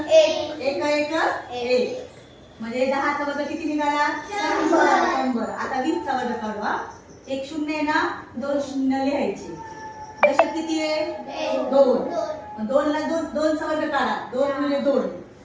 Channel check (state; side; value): identical; both; correlation 1.00